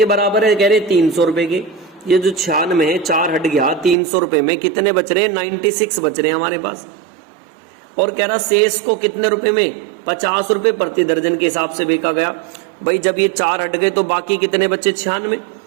बराबर है, कह रहे 300 रुपए के। ये जो 96 है, 4 हट गया, 300 रुपए में कितने बच रहे, 96 बच रहे हैं हमारे पास। और कह रहा शेष को कितने रुपए में, 50 रुपए प्रति दर्जन के हिसाब से बेचा गया। भाई जब ये 4 हट गए तो बाकी कितने बचे, 96।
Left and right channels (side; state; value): left; drops out; at 4.0 s